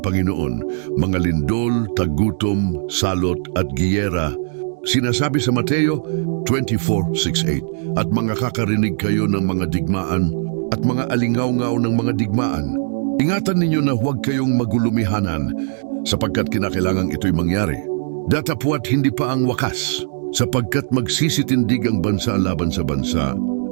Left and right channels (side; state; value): left; silent; digital silence